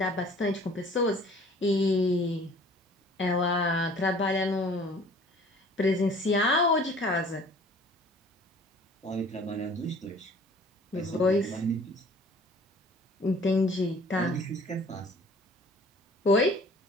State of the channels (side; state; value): both; normal; correlation 0.51